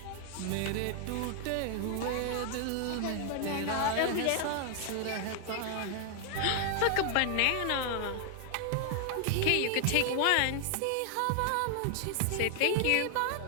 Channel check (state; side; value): different; both; correlation 0.00